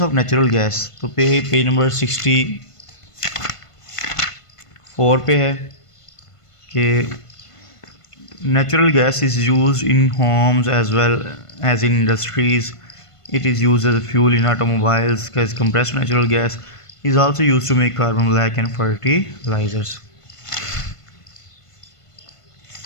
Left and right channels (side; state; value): right; late; 1.5 ms